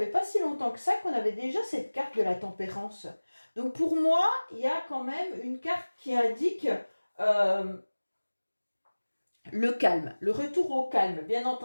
pas si longtemps que ça qu'on avait déjà cette carte de la tempérance. Donc pour moi, il y a quand même une carte qui indique le calme, le retour au calme, bien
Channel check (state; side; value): inverted; both; correlation -1.00